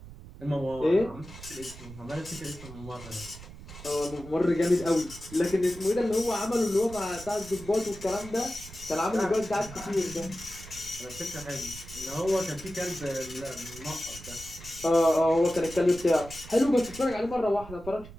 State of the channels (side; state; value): right; noise; rumble, 15 dB below the sound